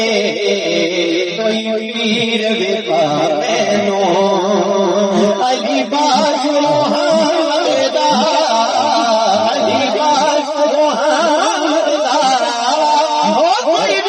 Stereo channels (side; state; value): both; identical; correlation 1.00